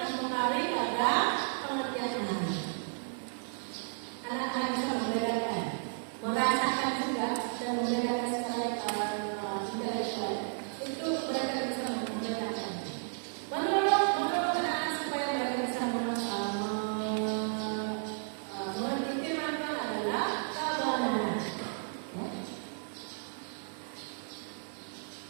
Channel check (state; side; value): silent; left; digital silence